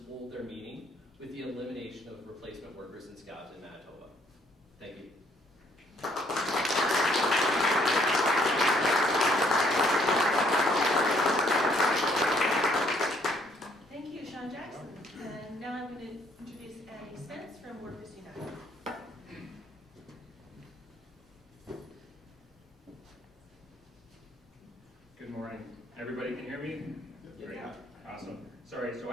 hold their meaning with the elimination of replacement workers and scabs in Manitoba. Thank you. Thank you, Sean Jackson. And now I'm going to introduce Andy Spence from Workers United. Good morning. Everybody can hear me? Great. Awesome. Sorry, so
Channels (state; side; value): normal; both; correlation 0.66